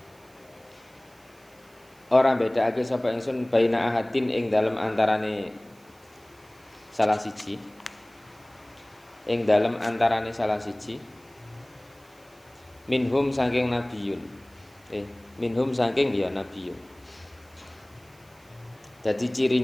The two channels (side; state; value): right; noise; hiss, 29 dB below the sound